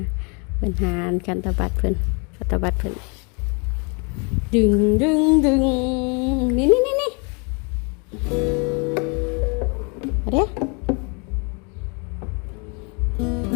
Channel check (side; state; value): right; quieter; 33.8 dB